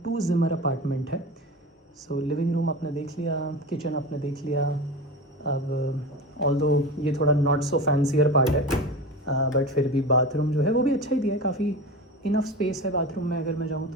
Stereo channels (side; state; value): both; normal; correlation 0.28